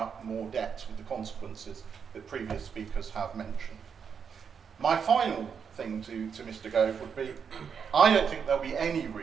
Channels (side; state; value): left; quieter; 6.8 dB